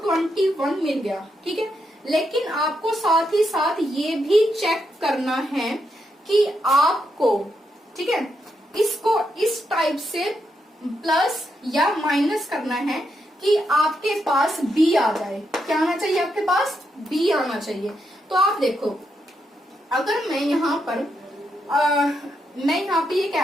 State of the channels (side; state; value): both; normal; correlation 0.82